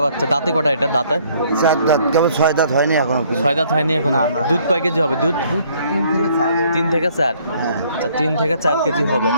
বাচ্চা। দাঁতে কটা এটা? দাঁতে 4 দাঁত, কেবল 6 দাঁত হয়নি এখনো। 6 দাঁত হয়নি এখনো। দুধ কয় কেজি হবে? দুধ 3 থেকে 4। হ্যাঁ, আচ্ছা, 3 থেকে 4 কেজি হবে।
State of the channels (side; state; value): both; inverted; correlation -0.63